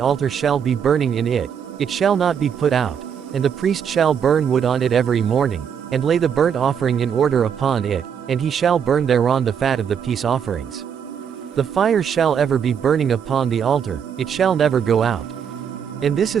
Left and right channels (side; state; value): left; quieter; 7.7 dB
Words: shall be burning in it, it shall not be put out, and the priest shall burn wood on it every morning, and lay the burnt offering in order upon it, and he shall burn thereon the fat of the peace offerings. The fire shall ever be burning upon the altar, it shall never go out. And this